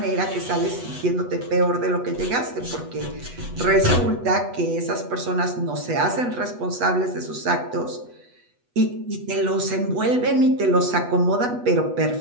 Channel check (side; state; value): left; late; 8.1 ms